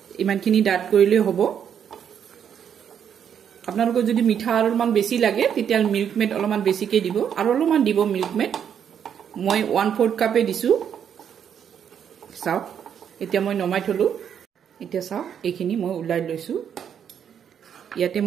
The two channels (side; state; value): left; quieter; 8.4 dB